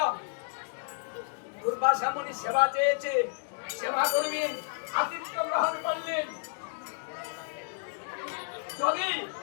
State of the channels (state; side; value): silent; right; digital silence